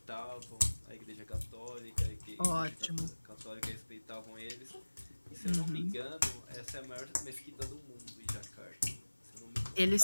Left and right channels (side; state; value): both; inverted; correlation -1.00